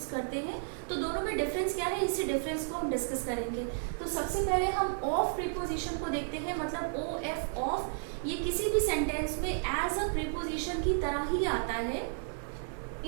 करते हैं तो दोनों में डिफरेंस क्या है, इसी डिफरेंस को हम डिस्कस करेंगे। तो सबसे पहले हम ऑफ प्रीपोजिशन को देखते हैं, मतलब OF ऑफ ये किसी भी सेंटेंस में एज अ प्रीपोजिशन की तरह ही आता है।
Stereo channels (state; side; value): silent; left; digital silence